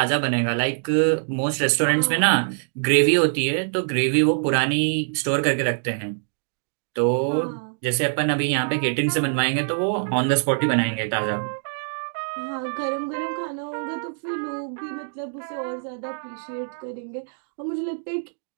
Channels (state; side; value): silent; left; digital silence